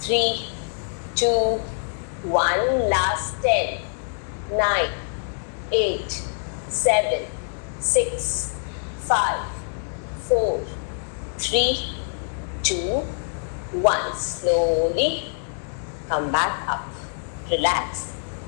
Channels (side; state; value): right; silent; digital silence